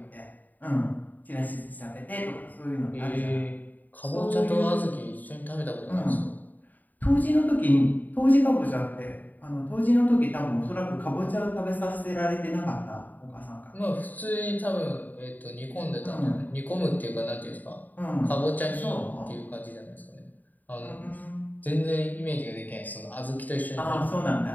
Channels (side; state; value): right; late; 0.084 ms